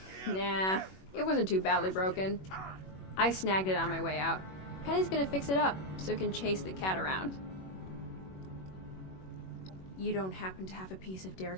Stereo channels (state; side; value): late; right; 21 ms